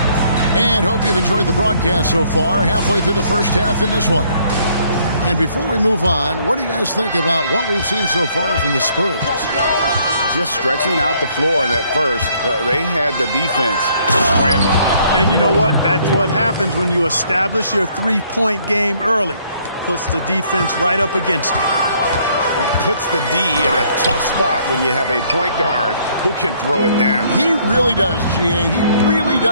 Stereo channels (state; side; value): inverted; both; correlation -0.65